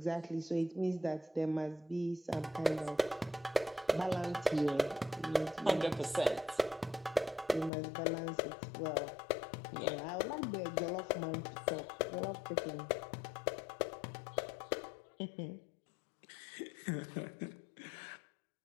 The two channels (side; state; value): right; drops out; at 7.7 s